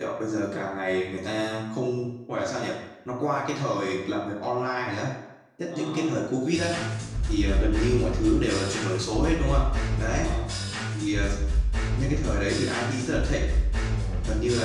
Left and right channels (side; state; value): both; identical; correlation 1.00